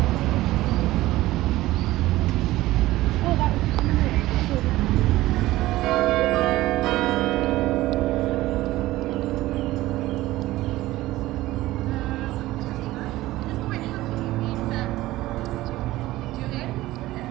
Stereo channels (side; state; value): left; quieter; 17.0 dB